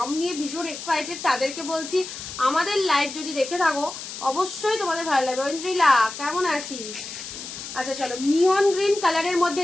নিয়ে ভীষণ এক্সাইটেড তাদেরকে বলছি আমাদের লাইভ যদি দেখে থাকো অবশ্যই তোমাদের ভালো লাগবে। ঐন্দ্রিলা কেমন আছিস? আচ্ছা চলো মিয়ন গ্রিন কালারের মধ্যে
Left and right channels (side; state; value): left; noise; hiss, 10 dB below the sound